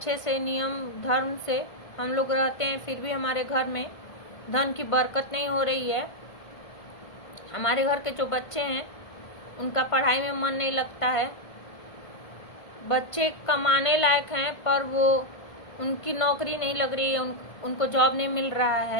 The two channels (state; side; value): late; right; 1.5 ms